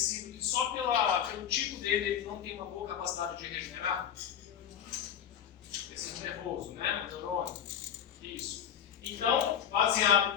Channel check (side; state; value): right; quieter; 9.0 dB